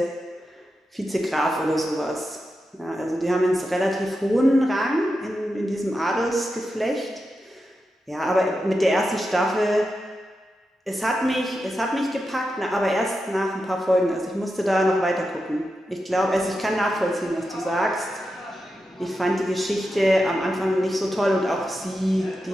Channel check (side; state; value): both; normal; correlation 0.89